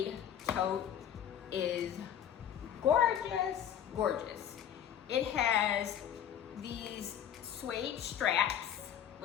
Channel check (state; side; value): quieter; right; 9.6 dB